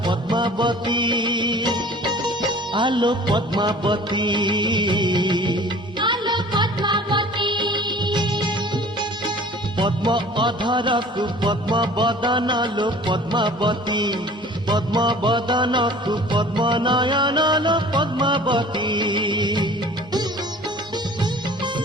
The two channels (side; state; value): both; normal; correlation 0.47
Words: पद्मावती आलो पद्मावती पद्म अधरकु पद्म बदनलो पद्मावती पद्म बदनकु पद्म नयनलो पद्मावती